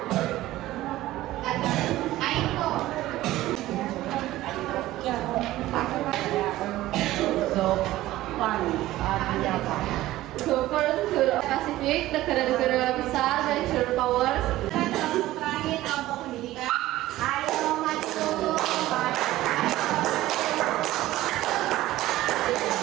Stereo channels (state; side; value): quieter; left; 15.9 dB